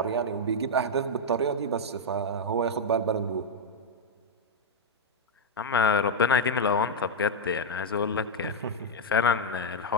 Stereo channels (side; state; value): both; normal; correlation -0.01